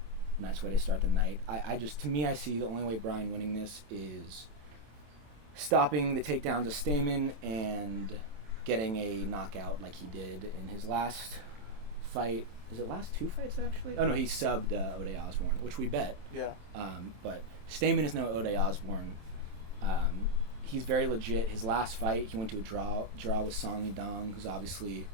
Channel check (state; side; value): late; left; 27 ms